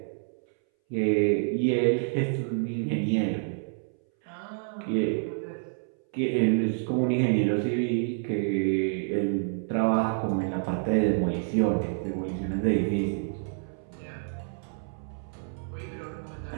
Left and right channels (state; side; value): silent; left; 59 dB below the other